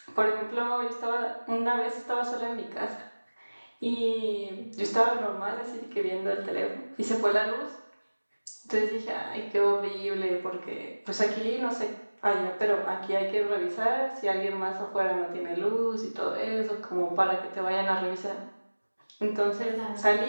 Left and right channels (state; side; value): inverted; both; correlation -1.00